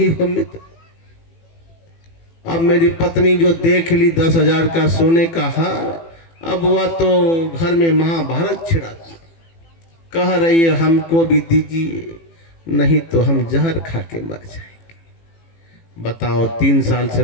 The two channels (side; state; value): right; late; 18 ms